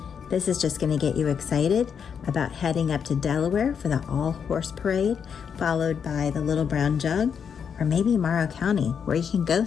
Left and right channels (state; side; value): quieter; right; 7.1 dB